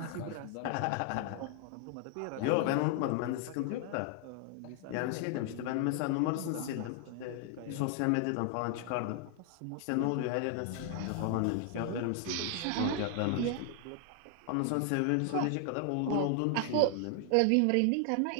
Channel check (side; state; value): both; different; correlation 0.00